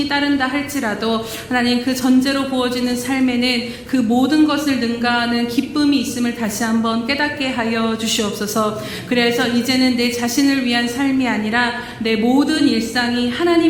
따른다 할지라도 하나님 그 전제로 부어지는 삶에는 그 모든 것을 능가하는 기쁨이 있음을 다시 한번 깨닫게 하여 주시옵소서. 그래서 이제는 내 자신을 위한 삶이 아니라 내 모든 일상이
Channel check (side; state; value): both; identical; correlation 1.00